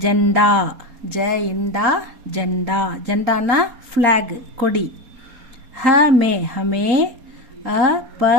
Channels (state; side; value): late; left; 4.3 ms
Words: ஜெண்டா ஜ இண்டா ஜெண்டா ஜெண்டானா ஃப்ளாக் கொடி. ஹமே ஹமே